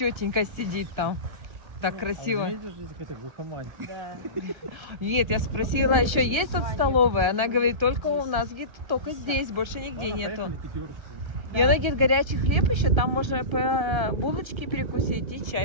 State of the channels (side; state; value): left; late; 1.3 ms